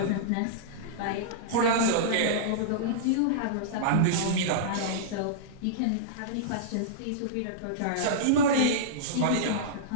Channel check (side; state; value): both; different; correlation -0.03